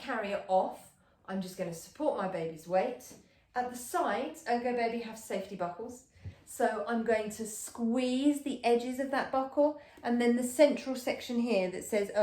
off, I'm just going to support my baby's weight. At the sides, ErgoBaby have safety buckles. So I'm going to squeeze the edges of that buckle, and then the central section here that says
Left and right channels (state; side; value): identical; both; correlation 1.00